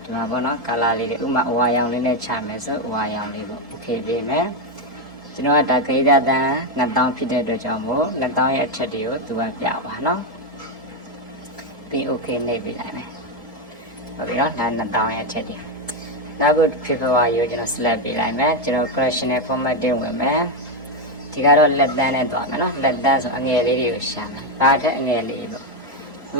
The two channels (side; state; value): both; normal; correlation 0.06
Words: ဒီမှာပေါ့နော် color လေးတွေဥမာအဝါရောင်လေးနဲ့ချမယ်ဆိုအဝါရောင်လေးပေါ့ okay ပေးမယ်ကျွန်တော်ကဒါ greater than 2000ဖြစ်တဲ့အတွက်ကြောင့်မို့2000ရဲ့အထက်တွေကိုသူကပြပါနော်ပြီး okay နှိပ်ပေးလိုက်မယ်ဟုတ်ပြီနော်ဒါ2000ရဲ့အချက်တွေနောက်ခု February ကိုကျွန်တော် select ပေးလိုက်မယ်ကျွန်တော် correctional formatting ဝင်မယ်ဒီကတော့လက်တန်းနဲ့တွားမယ်နော်လက်တန်းဆိုအငယ်လေးတွေကိုရှာမယ်ဒါထက်အငယ်လေးပေါ့